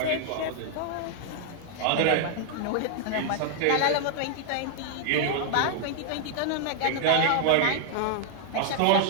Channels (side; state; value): both; different; correlation -0.01